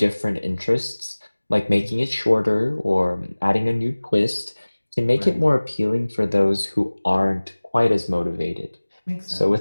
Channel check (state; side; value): inverted; both; correlation -1.00